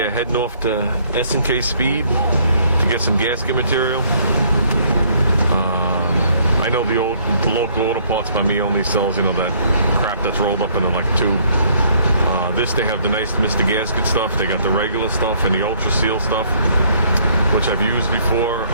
heading off to S&K Speed to get some gasket material. I know the local auto parts by me only sells, you know, that crap that's rolled up into like a tube. This, they have the nice Mr. Gasket stuff. They got the regular stuff and the Ultra Seal stuff, which I've used before.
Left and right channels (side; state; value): both; inverted; correlation -0.63